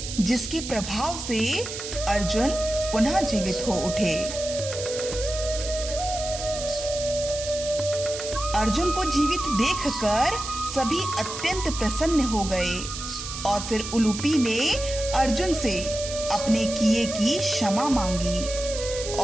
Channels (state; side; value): noise; right; hiss, 8 dB below the sound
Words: जिसके प्रभाव से अर्जुन पुनः जीवित हो उठे। अर्जुन को जीवित देखकर सभी अत्यंत प्रसन्न हो गए और फिर उलूपी ने अर्जुन से अपने किए की क्षमा मांगी